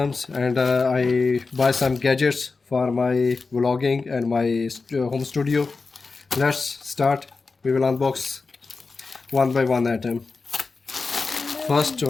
and I buy some gadgets for my vlogging and my home studio. Let's start. We will unbox one by one item. First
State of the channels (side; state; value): right; quieter; 4.2 dB